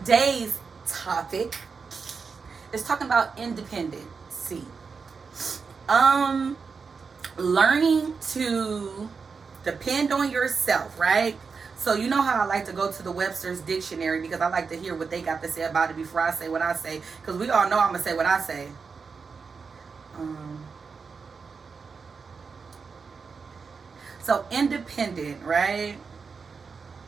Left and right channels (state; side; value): quieter; left; 5.2 dB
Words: topic is talking about independency. Learning to depend on yourself, right? So you know how I like to go to the Webster's dictionary because I like to hear what they got to say about it before I say what I say. Because we all know I'm going to say what I say. So independent, right?